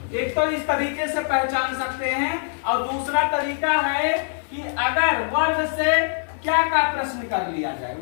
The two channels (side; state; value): right; silent; digital silence